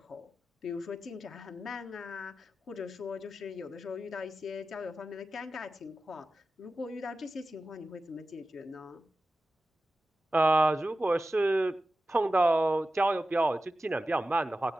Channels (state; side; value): normal; both; correlation 0.93